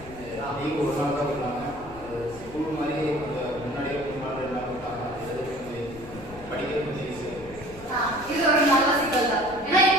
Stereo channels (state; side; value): noise; left; rumble, 18 dB below the sound